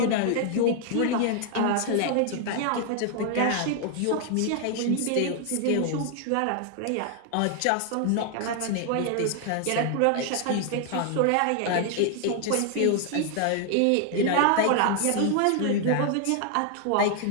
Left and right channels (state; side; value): different; both; correlation 0.00